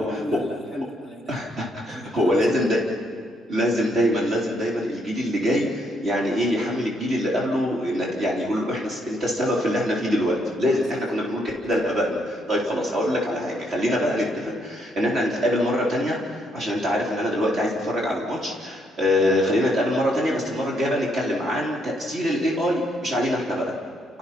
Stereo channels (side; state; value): both; normal; correlation 0.73